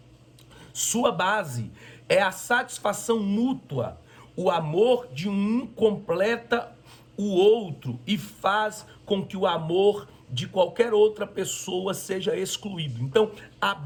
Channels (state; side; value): identical; both; correlation 1.00